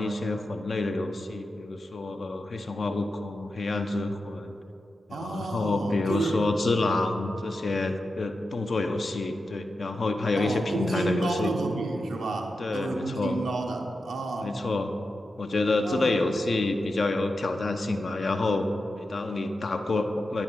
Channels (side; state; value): both; normal; correlation 0.90